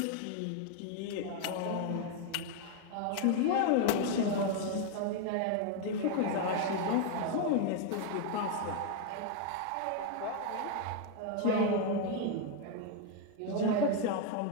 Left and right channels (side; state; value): both; different; correlation 0.00